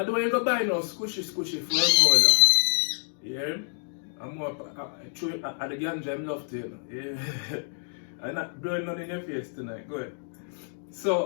don't want you to go buy no squishy foam roller. Yeah? I'm more at the ganja, I'm love to, you know. Yeah. I'm not blowing none in your face tonight. Go ahead.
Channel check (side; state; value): right; silent; 60 dB below the other